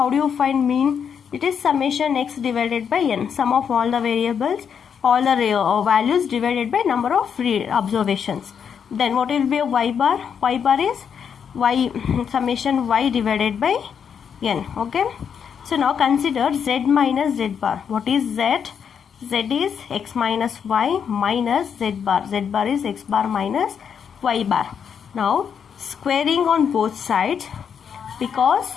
do you find mean? It is summation x divided by n, sum of all the variables, all the values divided by number of observations. Then what will be a y bar? Y bar is summation y divided by n. Okay, so now consider z minus z bar. What is z? Z is x minus y minus z bar. Z bar is x bar minus y bar. Now squaring on both sides, because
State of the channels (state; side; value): quieter; right; 7.4 dB